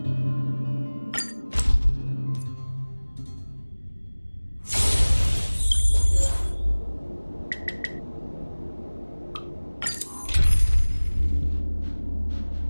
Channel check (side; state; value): both; inverted; correlation -1.00